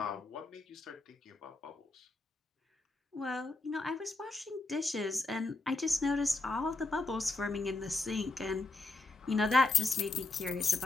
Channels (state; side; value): quieter; right; 3.3 dB